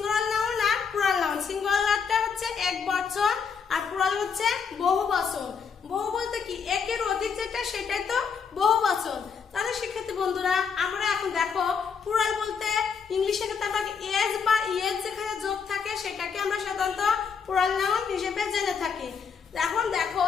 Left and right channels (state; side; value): quieter; right; 6.2 dB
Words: নাউন আর প্লুরাল নাউন। সিঙ্গুলারটা হচ্ছে এক বচন আর প্লুরাল হচ্ছে বহু বচন। বহু বলতে কি একের অধিক যেটা সেটাই তো বহু বচন। তাহলে শিক্ষার্থী বন্ধুরা আমরা এখন দেখো প্লুরাল বলতে ইংলিশে ক্ষেত্রে আমরা এজ বা ইএজ যেখানে যোগ থাকে সেটাকে আমরা সাধারণত প্লুরাল নাউন হিসেবে জেনে থাকি। এখন দেখো